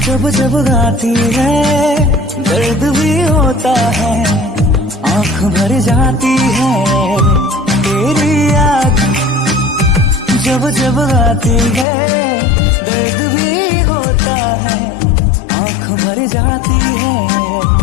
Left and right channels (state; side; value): drops out; right; at 11.9 s